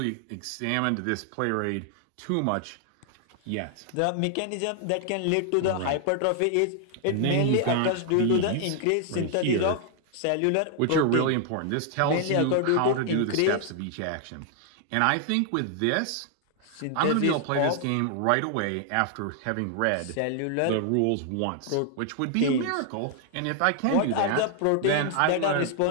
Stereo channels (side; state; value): both; different; correlation 0.00